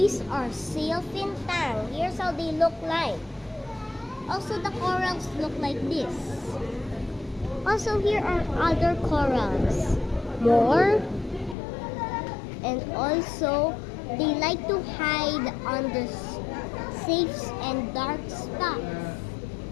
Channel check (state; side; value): drops out; right; at 11.6 s